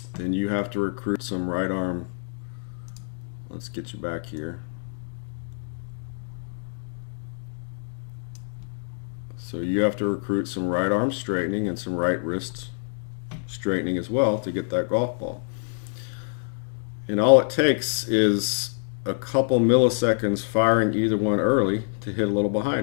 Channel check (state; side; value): silent; right; digital silence